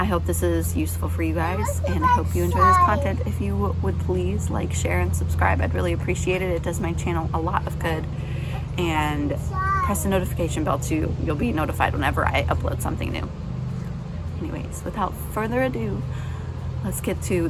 hope this is useful for you guys, and I hope you enjoy this content. If you would please like, share, and subscribe, I'd really appreciate it. It does my channel a lot of good. And press the notification bell too. You'll be notified whenever I upload something new. Anyways, without further ado, let's get to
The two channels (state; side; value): identical; both; correlation 1.00